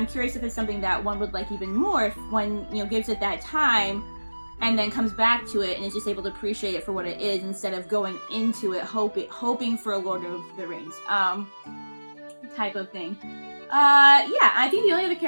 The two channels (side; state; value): both; inverted; correlation -1.00